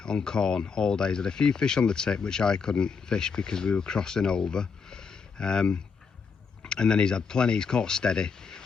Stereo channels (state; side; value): quieter; right; 5.5 dB